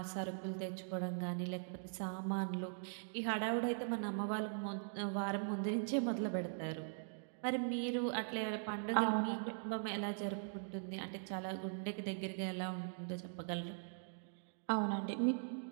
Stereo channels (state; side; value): silent; left; digital silence